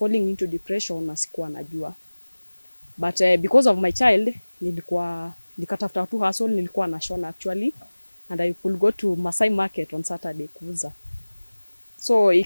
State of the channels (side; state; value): both; inverted; correlation -1.00